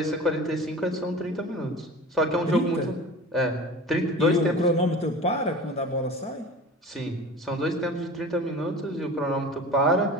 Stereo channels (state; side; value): normal; both; correlation 0.36